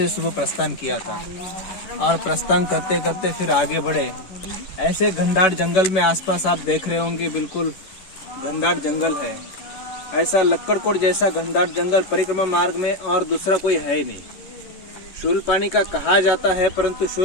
सुबह प्रस्थान किया था और प्रस्थान करते करते फिर आगे बढ़े। ऐसे घनदाट जंगल में आसपास आप देख रहे होंगे, बिल्कुल घनदाट जंगल है। ऐसा लक्कड़कोट जैसा घनदाट जंगल परिक्रमा मार्ग में और दूसरा कोई है नहीं। शूलपानी का कहा जाता है, परंतु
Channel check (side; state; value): right; late; 11 ms